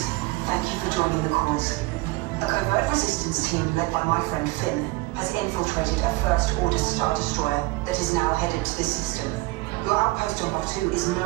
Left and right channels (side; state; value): left; quieter; 23.1 dB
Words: thank you for joining the cause. A covert resistance team led by my friend Finn has infiltrated a First Order Star Destroyer that is now headed to this system. Your outpost on Batuu is